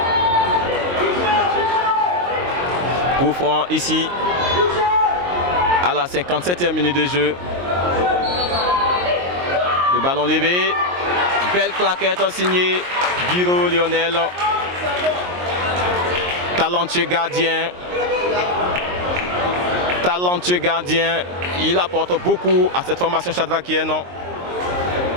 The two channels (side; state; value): left; late; 22 ms